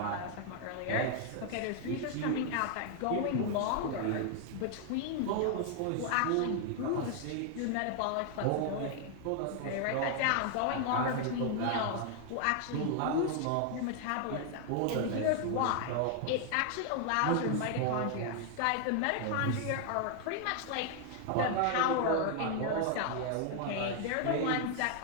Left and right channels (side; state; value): both; different; correlation 0.00